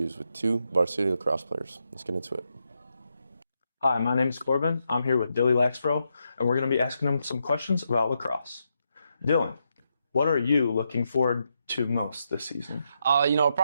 with 2 varsity lacrosse players. Let's get into it. Hi, my name is Corbin. I'm here with Dilly Laxbro, and we're going to be asking them some questions about lacrosse. Dylan, what are you looking forward to most this season?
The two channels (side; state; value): both; inverted; correlation -0.82